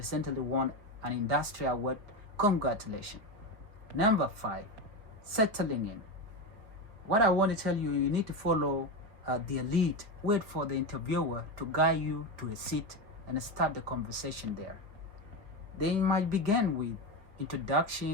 won an industry award. Congratulations. Number 5, settling in. What I want to tell you, you need to follow the lead. Wait for the interviewer to guide you to a seat and start the conversation there. They might begin with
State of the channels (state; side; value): late; left; 5.1 ms